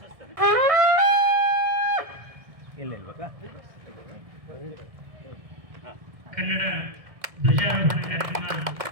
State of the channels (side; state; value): left; late; 1.6 ms